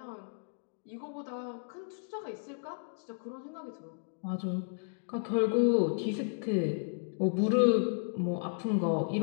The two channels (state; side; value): silent; right; digital silence